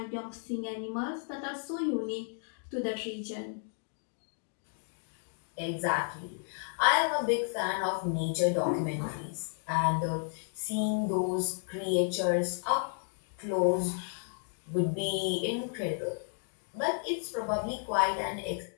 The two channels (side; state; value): right; silent; 56 dB below the other